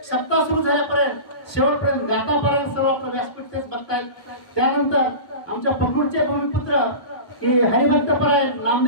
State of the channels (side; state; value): right; late; 1.2 ms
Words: सप्ताह सुरू झाल्यापर्यंत शेवटपर्यंत गातापर्यंत सर्व आपलं व्यासपीठ तेच बघतायत. त्यानंतर आमच्या पखरूडचे भूमिपुत्र की हरिभक्तपरायण